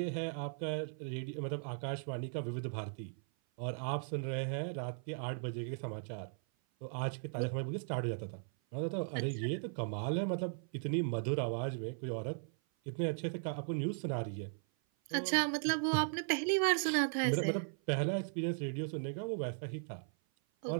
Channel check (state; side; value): silent; left; 53 dB below the other